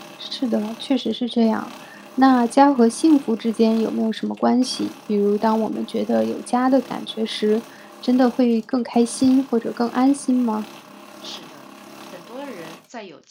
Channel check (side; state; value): both; identical; correlation 1.00